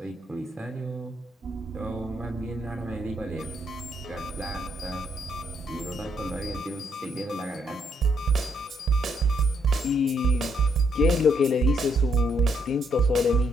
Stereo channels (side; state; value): both; normal; correlation 0.74